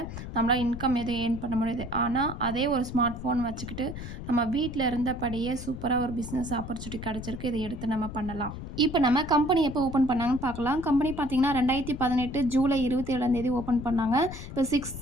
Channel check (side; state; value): left; noise; rumble, 9 dB below the sound